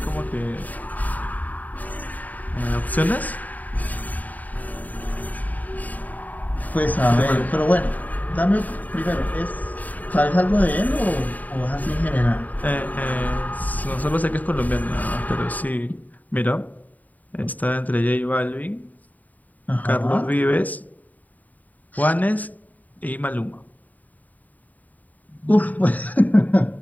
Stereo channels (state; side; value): late; right; 0.078 ms